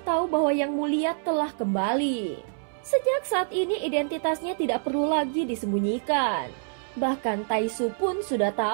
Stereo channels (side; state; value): left; silent; 61 dB below the other